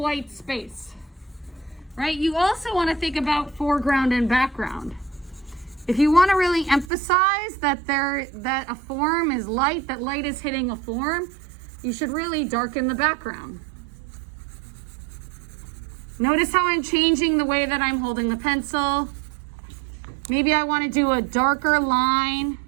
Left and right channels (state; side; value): drops out; left; at 6.9 s